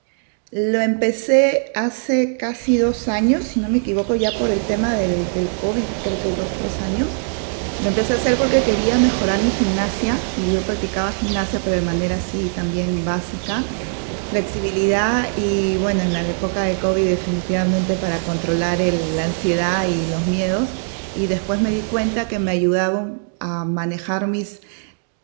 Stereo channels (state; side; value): silent; left; digital silence